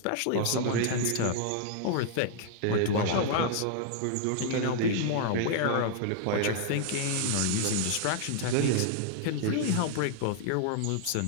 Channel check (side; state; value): both; different; correlation 0.00